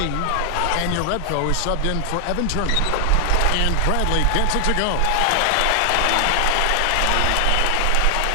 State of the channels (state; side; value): different; both; correlation 0.00